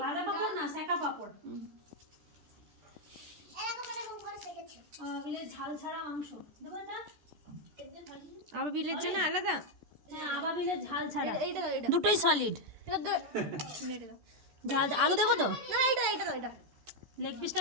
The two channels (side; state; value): left; late; 14 ms